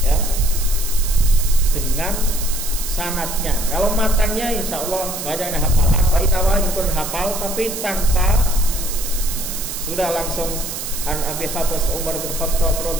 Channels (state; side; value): noise; right; hiss, 6 dB below the sound